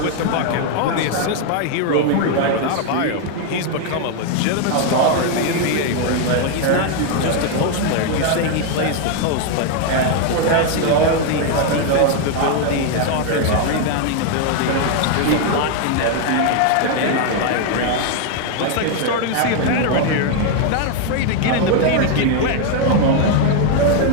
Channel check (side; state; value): both; different; correlation 0.01